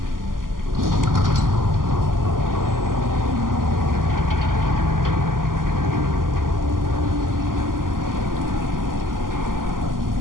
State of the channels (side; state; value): left; late; 0.91 ms